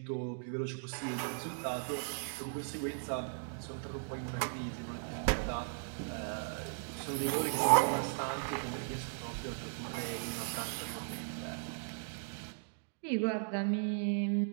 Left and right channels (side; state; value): left; silent; digital silence